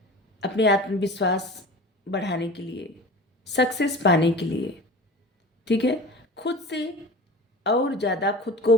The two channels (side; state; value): both; normal; correlation 0.36